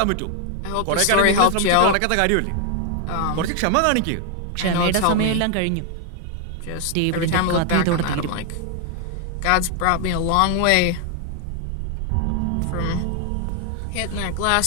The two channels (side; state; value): both; different; correlation 0.00